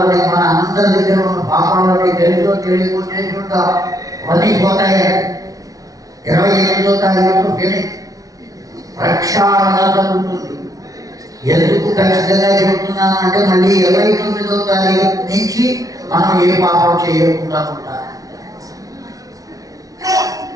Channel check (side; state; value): left; late; 0.17 ms